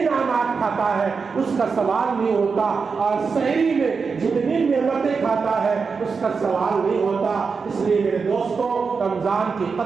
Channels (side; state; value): left; quieter; 5.1 dB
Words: کھاتا ہے اس کا سوال نہیں ہوتا، اور سحری میں جتنی نعمتیں کھاتا ہے اس کا سوال نہیں ہوتا۔ اس لیے میرے دوستوں رمضان کی